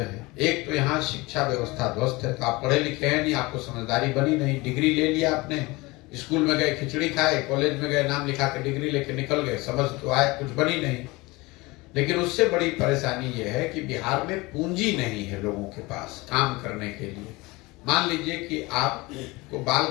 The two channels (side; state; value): right; quieter; 22.9 dB